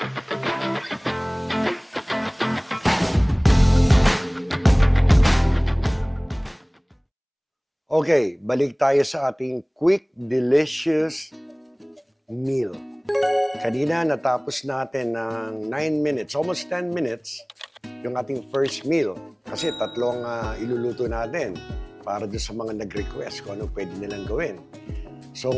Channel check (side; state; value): both; identical; correlation 1.00